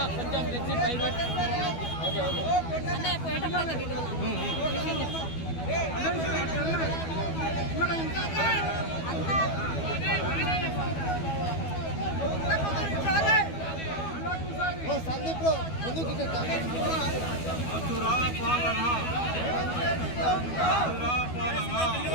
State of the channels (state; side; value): late; right; 12 ms